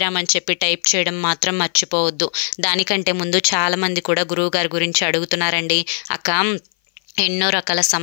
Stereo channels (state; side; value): silent; right; 57 dB below the other